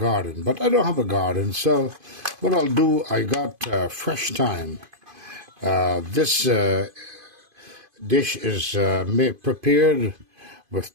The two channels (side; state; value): left; late; 2.5 ms